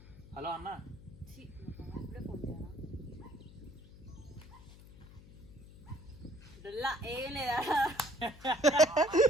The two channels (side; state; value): left; noise; hum, 19 dB below the sound